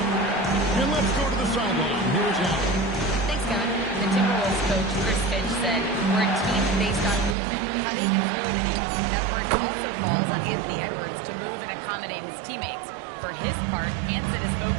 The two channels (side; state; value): left; drops out; at 7.4 s